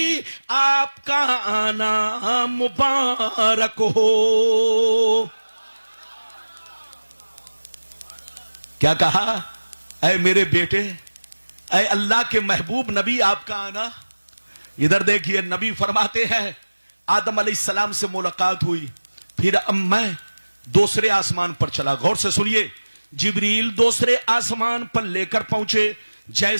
आपका आना मुबारक हो। क्या कहा? ऐ मेरे बेटे, ऐ अल्लाह के महबूब नबी, आपका आना। इधर देखिए, नबी फरमाते हैं आदम अलैहिस्सलाम से मुलाकात हुई, फिर अब मैं दूसरे आसमान पर चला। गौर से सुनिए, जिब्रील दूसरे आसमान पर लेकर पहुंचे।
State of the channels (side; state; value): both; inverted; correlation -1.00